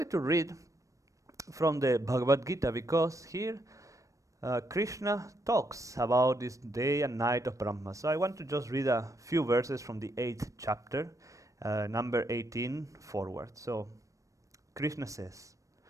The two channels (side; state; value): left; late; 0.16 ms